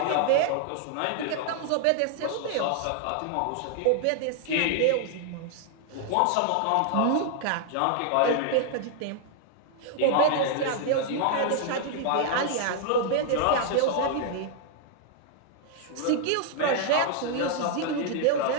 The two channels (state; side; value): different; both; correlation 0.00